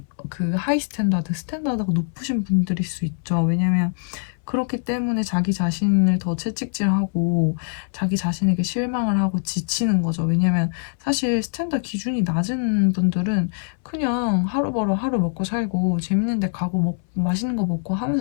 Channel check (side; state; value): right; silent; 64 dB below the other